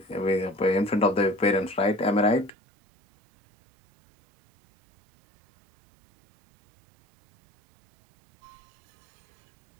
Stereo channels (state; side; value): drops out; left; at 2.5 s